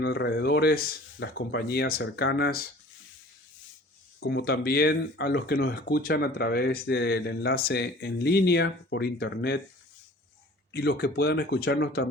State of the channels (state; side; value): normal; both; correlation 0.47